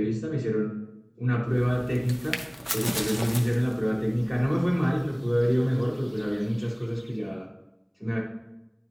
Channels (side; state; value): both; identical; correlation 1.00